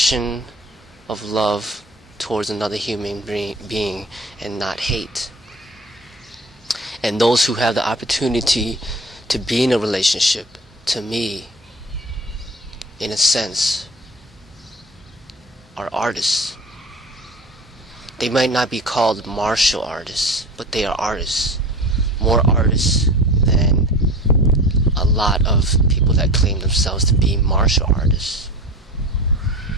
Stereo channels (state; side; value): normal; both; correlation 0.36